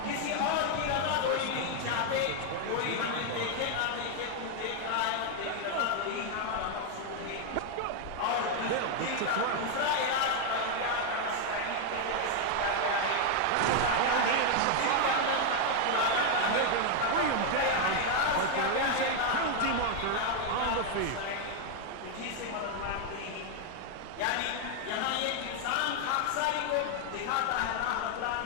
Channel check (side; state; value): both; different; correlation 0.00